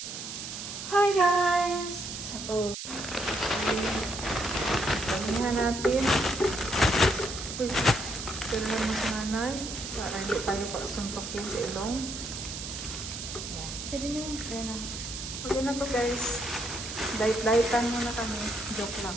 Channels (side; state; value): right; noise; hiss, 7 dB below the sound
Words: guys! So, panihan natin. Uy, tulungan mo si nanay para hindi tayo pagsuntokin sa ilong. Ayan. Pwede na yun. Ayan na. Okay na to guys. Diet-dietan muna kami. Joke lang.